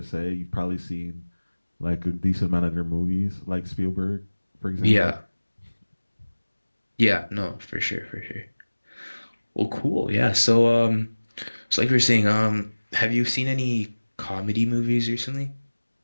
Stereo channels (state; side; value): inverted; both; correlation -1.00